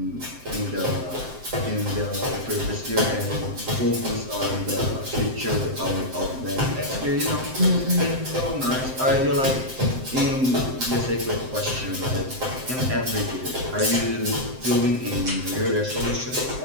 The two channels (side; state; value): left; late; 7.7 ms